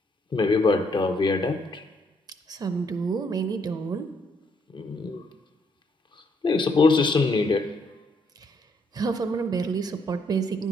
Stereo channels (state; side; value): normal; both; correlation 0.72